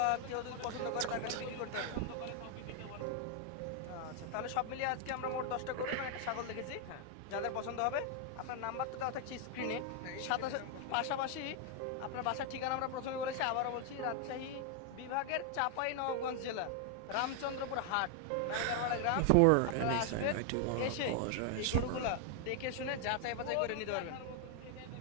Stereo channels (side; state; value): both; different; correlation 0.00